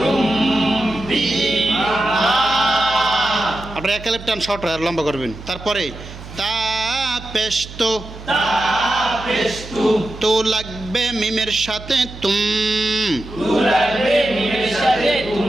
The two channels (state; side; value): noise; right; hum, 14 dB below the sound